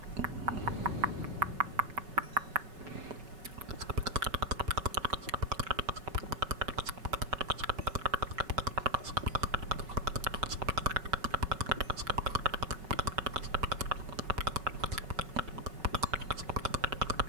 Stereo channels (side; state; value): left; late; 5.3 ms